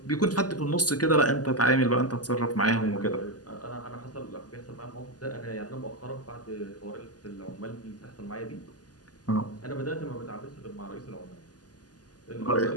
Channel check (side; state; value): right; late; 0.68 ms